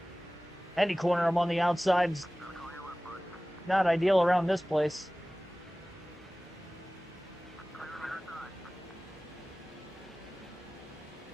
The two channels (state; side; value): normal; both; correlation 0.98